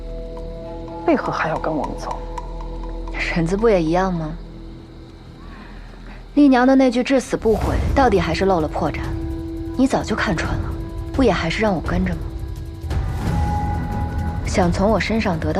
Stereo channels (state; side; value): identical; both; correlation 1.00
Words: 为何还要跟我们走？婶子不也一样吗？丽娘的那句至死不悔，到底还是露了破绽。你早就看穿了，不也还是让我跟着吗？想从我身上得